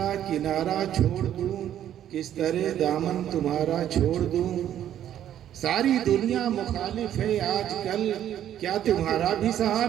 کنارہ چھوڑ دوں، کس طرح دامن تمہارا چھوڑ دوں، ساری دنیا مخالف ہے آج کل، کیا تمہارا بھی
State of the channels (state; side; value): quieter; left; 11.0 dB